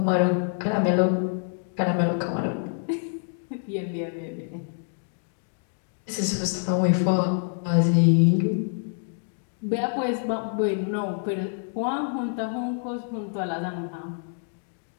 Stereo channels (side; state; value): right; silent; 57 dB below the other